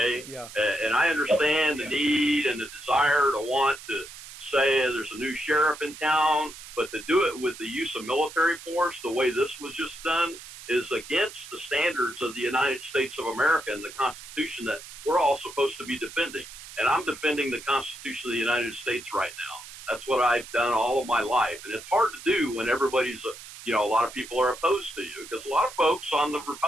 Oh, yeah. And I understand the need and the desire to want to say there's a new sheriff in town, but to do it with the use of military force, the way this was just done, is against the standards of the United States of America and the Constitution that we're all supposed to be defending. And I'm defending the Constitution of the United States right now. That's what I've done all of my life. And it's hard to do when everybody's, a lot of people are opposed to you, because a lot of folks on the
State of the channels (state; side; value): noise; right; hiss, 15 dB below the sound